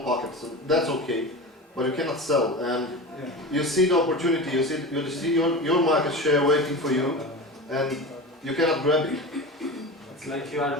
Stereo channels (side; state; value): both; normal; correlation 0.29